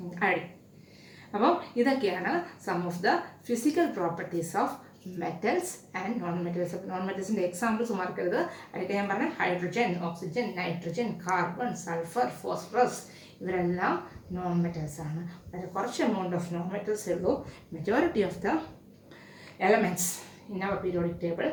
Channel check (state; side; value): identical; both; correlation 1.00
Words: അയഡിൻ. അപ്പോൾ ഇതൊക്കെയാണ് some of the physical properties of metals and non metals. Non മെറ്റൽസിൻ്റെ എക്സാമ്പിൾസ് മറക്കരുത്. അതൊക്കെ ഞാൻ പറഞ്ഞ hydrogen, oxygen, nitrogen, carbon, sulphur, phosphorus, ഇവരെല്ലാം നോൺ മെറ്റൽസ് ആണ്. വളരെ കുറച്ച് എമൗണ്ട് ഓഫ് നോൺ മെറ്റൽസേ ഉള്ളൂ. Majority of the elements in our periodic table